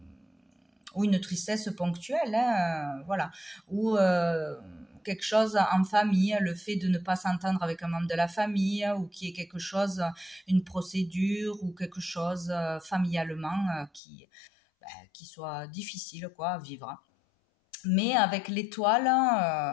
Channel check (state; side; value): drops out; right; at 14.0 s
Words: ou une tristesse ponctuelle, hein, voilà, ou quelque chose en famille, le fait de ne pas s'entendre avec un membre de la famille, ou qu'il y ait quelque chose, une procédure, ou quelque chose familialement qui soit difficile quoi, à vivre. Mais avec l'étoile